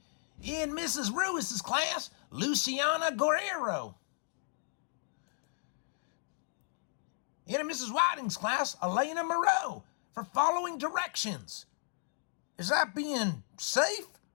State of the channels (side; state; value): right; silent; digital silence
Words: In Mrs. Ruiz's class, Luciana Guerrero. In Mrs. Whiting's class, Elena Moreau, for following directions. Is that being safe,